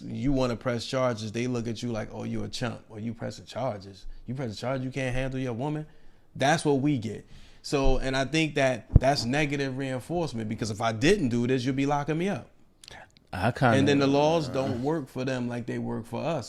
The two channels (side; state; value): both; identical; correlation 1.00